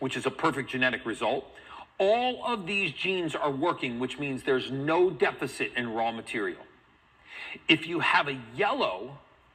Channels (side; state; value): both; identical; correlation 1.00